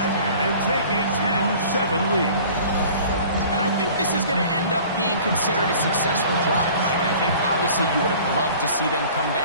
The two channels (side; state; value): both; inverted; correlation -0.47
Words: and take a 10-7 lead. And I think this is going to end up being considered a successful drive, Mike. I think obviously you would have loved to see them come